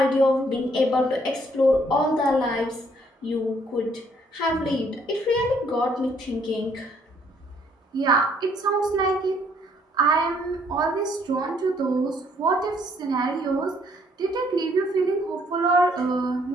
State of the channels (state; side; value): normal; both; correlation 0.66